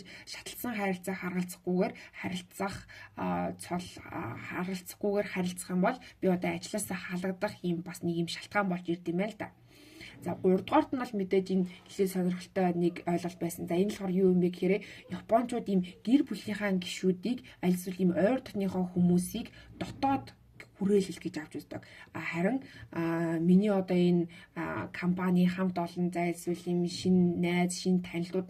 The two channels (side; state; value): both; identical; correlation 1.00